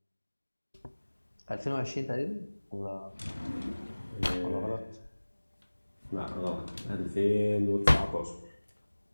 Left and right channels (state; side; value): inverted; both; correlation -1.00